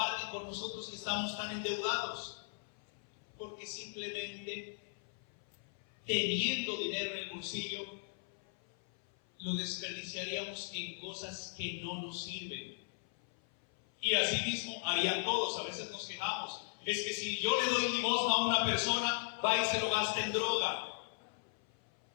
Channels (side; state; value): right; silent; 53 dB below the other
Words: con nosotros que estamos tan endeudados? Porque simplemente teniendo dinero en el bolsillo, lo desperdiciaríamos en cosas que no nos sirven. Y así mismo harían todos. A veces nos quejamos. Es que si yo le doy limosna a una persona, va y se lo gasta en droga.